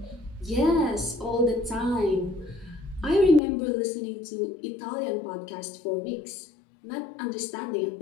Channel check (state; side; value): drops out; right; at 3.4 s